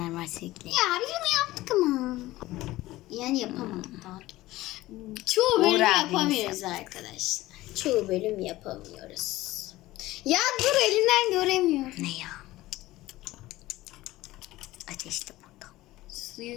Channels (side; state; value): right; quieter; 17.4 dB